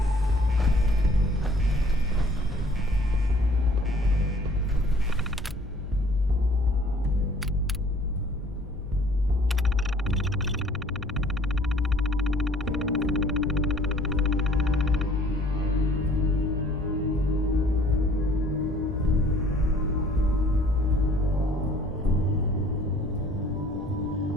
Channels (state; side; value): normal; both; correlation 0.55